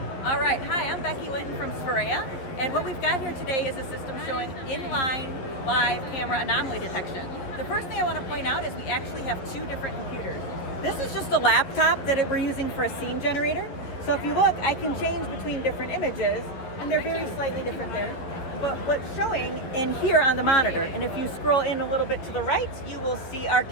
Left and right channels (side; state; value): right; late; 11 ms